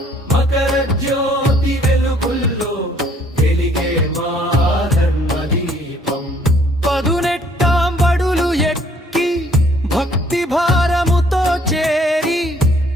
మకర జ్యోతి వెలుగుల్లో వెలిగే మా ధర్మ దీపం పదునెట్టాం బడులు ఎక్కి భక్తి భారముతో చేరి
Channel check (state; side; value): normal; both; correlation 0.61